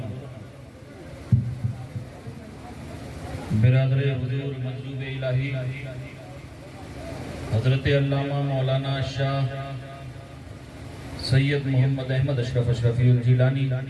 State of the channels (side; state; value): both; identical; correlation 1.00